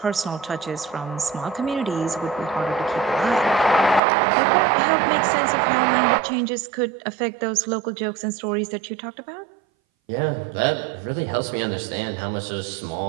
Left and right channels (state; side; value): drops out; left; at 4.0 s